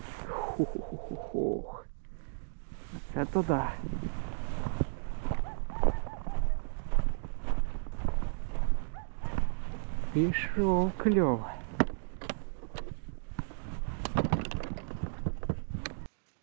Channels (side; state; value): left; silent; digital silence